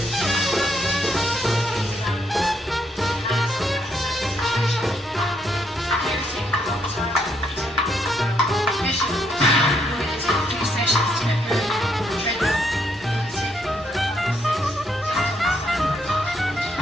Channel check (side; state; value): both; normal; correlation 0.74